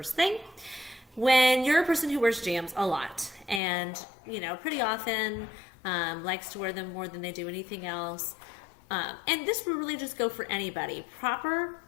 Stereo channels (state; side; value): drops out; right; at 3.6 s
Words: thing. When you're a person who wears jams a lot and, pretty often likes to wear them more than they do anything else, and this will really just go for anybody, proper